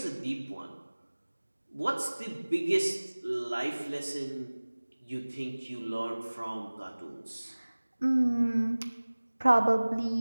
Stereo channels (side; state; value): both; inverted; correlation -1.00